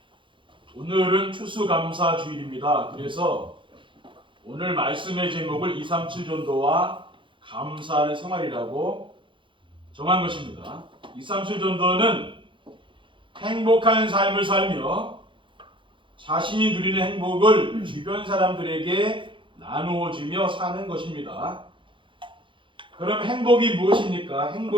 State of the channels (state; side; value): late; left; 0.24 ms